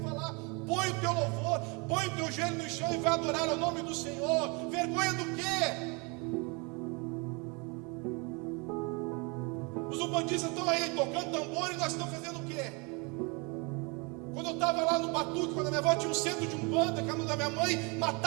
falar. Põe o teu louvor, põe o teu joelho no chão e vai adorar ao nome do Senhor. Vergonha do quê? Os umbandistas estão aí tocando tambor e nós estamos fazendo o quê? Quando eu estava lá no Batuque, quando a minha avó tinha um centro de umbanda, que a mãe da minha mãe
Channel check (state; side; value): quieter; left; 30.5 dB